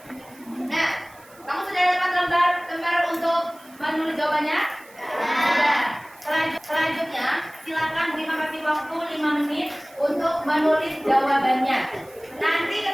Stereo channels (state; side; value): noise; right; hiss, 26 dB below the sound